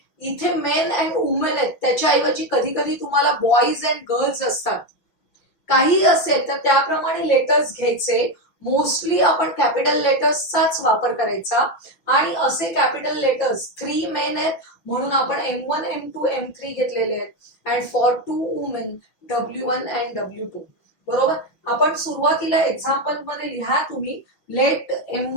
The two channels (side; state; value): right; late; 5.9 ms